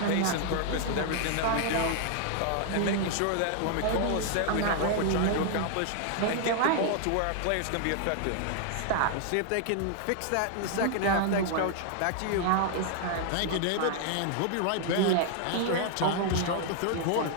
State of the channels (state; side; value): different; both; correlation 0.00